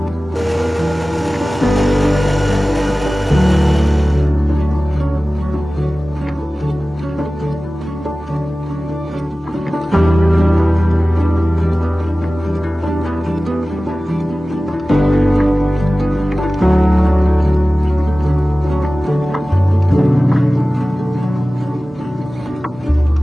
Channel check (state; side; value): normal; both; correlation 0.97